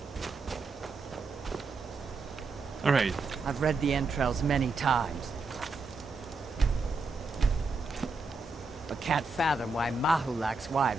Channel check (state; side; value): quieter; left; 3.8 dB